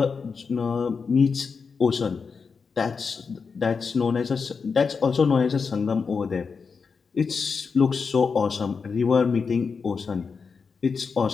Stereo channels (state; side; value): quieter; right; 5.3 dB